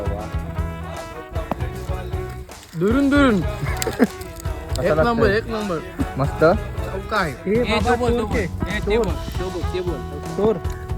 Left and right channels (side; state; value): both; identical; correlation 1.00